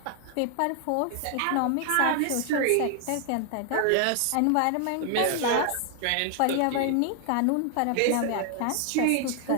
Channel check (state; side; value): different; both; correlation 0.00